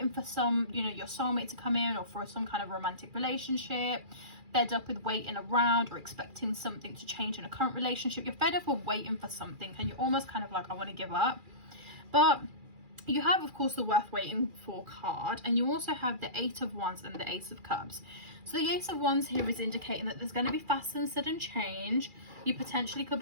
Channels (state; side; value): late; left; 2.4 ms